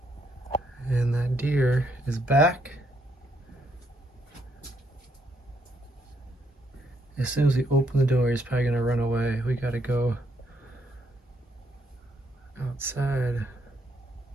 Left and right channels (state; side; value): normal; both; correlation 0.74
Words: and that deer is back. As soon as we open the door, he's probably gonna run away. We gotta go outside.